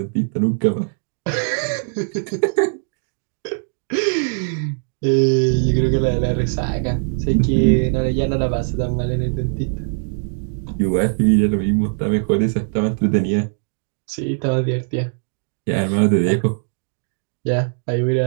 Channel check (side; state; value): left; silent; digital silence